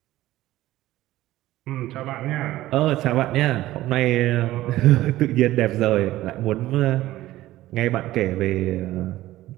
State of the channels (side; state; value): left; quieter; 15.8 dB